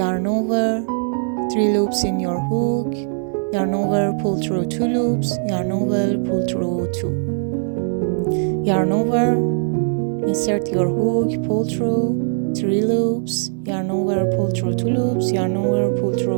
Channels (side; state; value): left; silent; 66 dB below the other